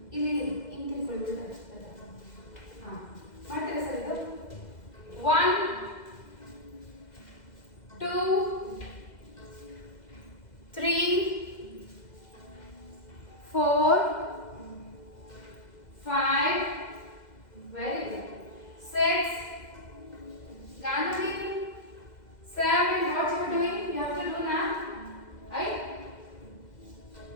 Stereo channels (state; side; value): late; right; 2.0 ms